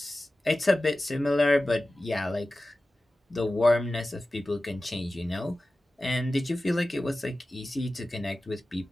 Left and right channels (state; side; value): normal; both; correlation 0.95